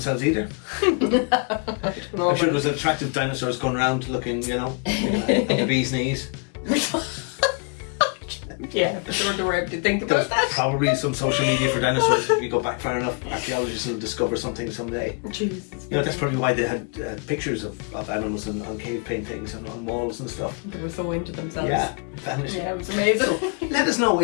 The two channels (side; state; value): right; quieter; 35.7 dB